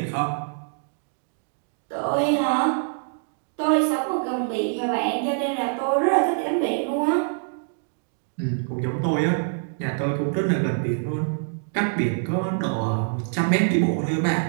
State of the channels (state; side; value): silent; left; digital silence